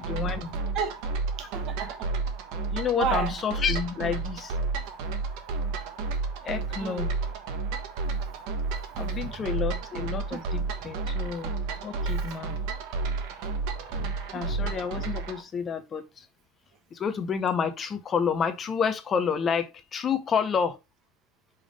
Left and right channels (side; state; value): both; normal; correlation 0.33